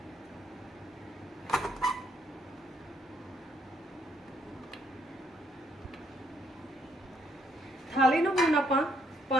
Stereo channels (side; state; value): both; normal; correlation 0.71